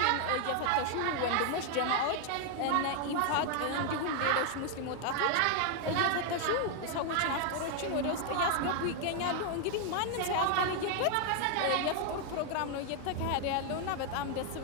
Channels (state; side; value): different; both; correlation 0.00